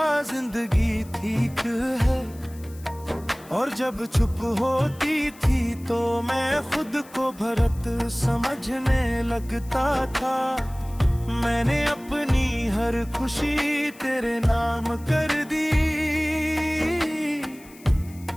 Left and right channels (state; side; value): noise; left; hiss, 23 dB below the sound